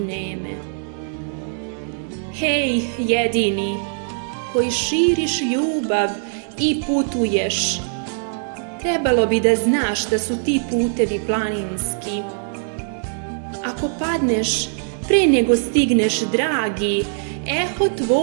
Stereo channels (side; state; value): left; silent; digital silence